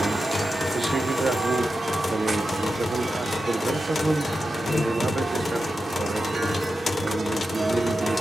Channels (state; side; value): normal; both; correlation 0.91